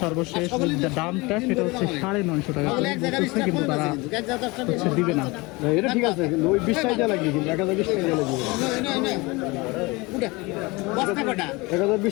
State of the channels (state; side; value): quieter; right; 24.5 dB